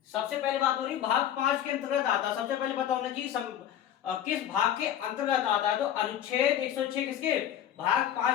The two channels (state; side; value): quieter; right; 10.6 dB